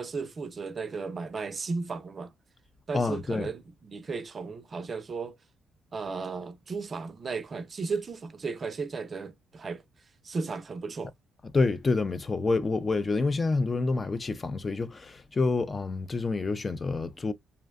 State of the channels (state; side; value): normal; both; correlation 0.89